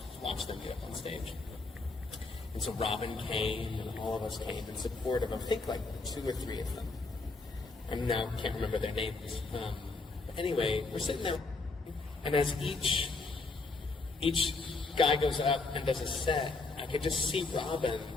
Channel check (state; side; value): quieter; right; 3.7 dB